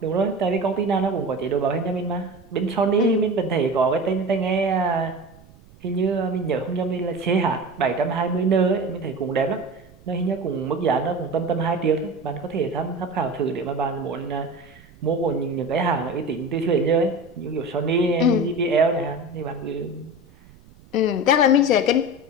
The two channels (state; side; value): noise; right; rumble, 25 dB below the sound